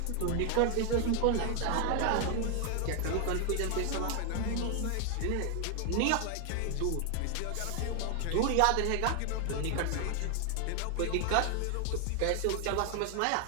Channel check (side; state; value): both; different; correlation 0.00